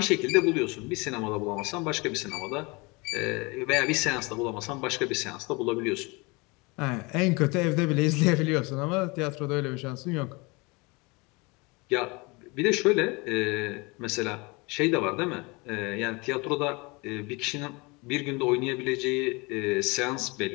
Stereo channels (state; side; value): quieter; right; 26.8 dB